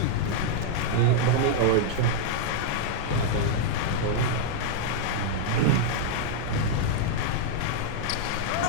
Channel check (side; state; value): both; different; correlation -0.01